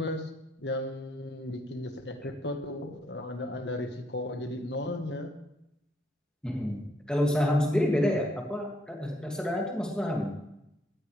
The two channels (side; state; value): both; normal; correlation 0.71